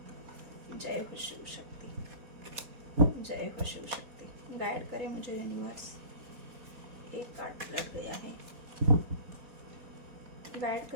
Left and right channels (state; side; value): late; left; 4.2 ms